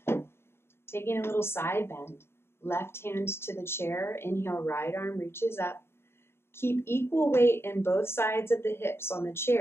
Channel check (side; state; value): right; late; 0.12 ms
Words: Taking a little side bend. Left hand to the chair. Inhale, right arm reaches up. Keep equal weight in both sides of the hips on the